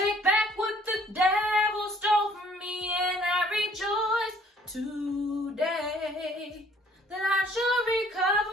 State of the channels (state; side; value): normal; both; correlation 0.60